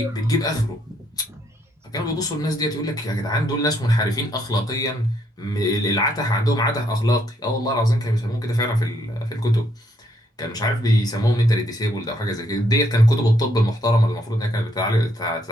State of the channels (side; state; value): both; normal; correlation 0.72